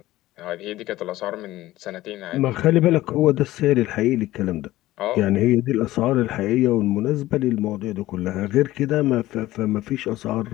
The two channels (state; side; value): quieter; right; 16.3 dB